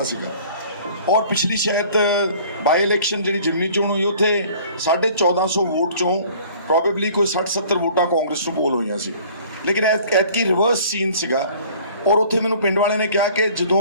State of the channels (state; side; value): inverted; both; correlation -0.51